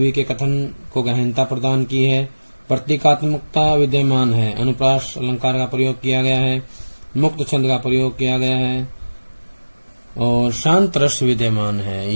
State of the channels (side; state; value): both; inverted; correlation -1.00